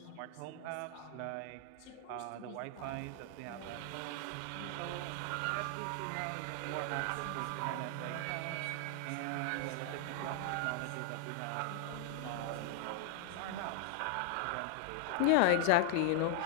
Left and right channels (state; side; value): different; both; correlation 0.00